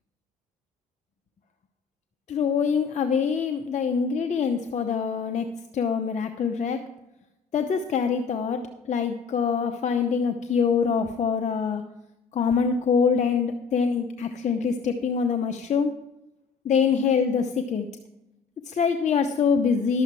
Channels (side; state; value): right; quieter; 5.8 dB